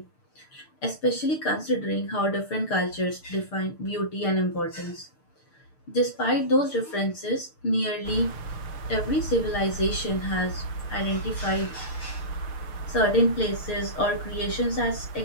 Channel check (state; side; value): late; right; 6.6 ms